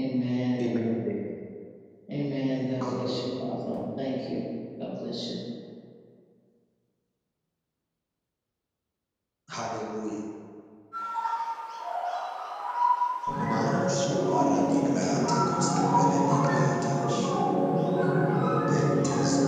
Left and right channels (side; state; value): both; identical; correlation 1.00